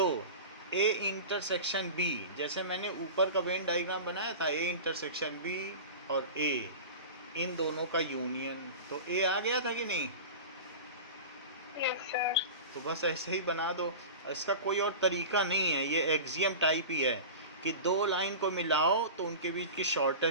ए इंटरसेक्शन बी, जैसे मैंने ऊपर का वेन डायग्राम बनाया था, ए इंटरसेक्शन बी और ए, इन दोनों का यूनियन, तो ए आ गया था कि नहीं? Yes sir. तो बस ऐसे ही बना दो, इसका कोई और तरीका नहीं है, ये एक्सियम टाइप ही है कि दो लाइन को मिलाओ तो उनके बीच की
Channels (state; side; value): inverted; both; correlation -0.32